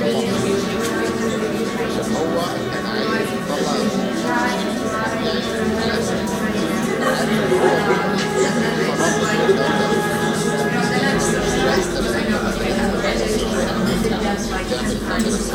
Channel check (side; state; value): both; identical; correlation 1.00